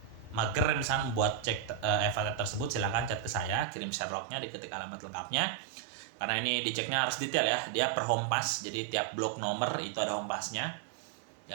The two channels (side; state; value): left; drops out; at 3.7 s